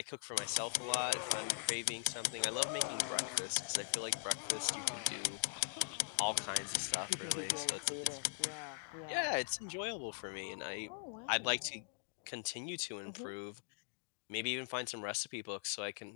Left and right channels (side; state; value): right; silent; digital silence